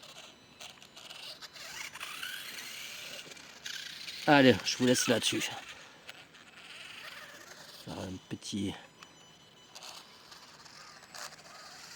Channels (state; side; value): identical; both; correlation 1.00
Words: Allez, je vous laisse là-dessus. Faire un petit...